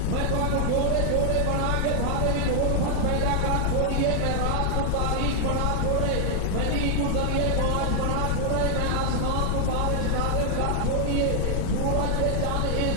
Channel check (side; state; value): both; different; correlation 0.00